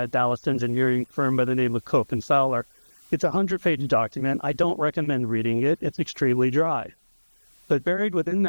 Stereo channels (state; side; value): inverted; both; correlation -1.00